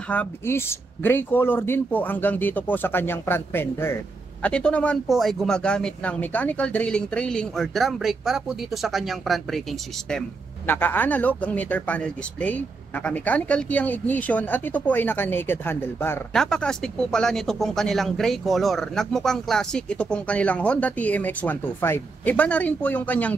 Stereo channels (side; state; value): left; quieter; 3.9 dB